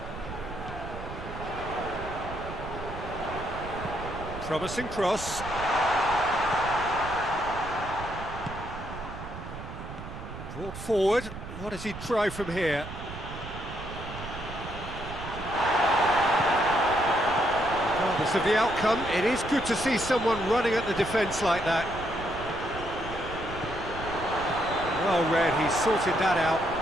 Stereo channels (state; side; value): noise; right; rumble, 11 dB below the sound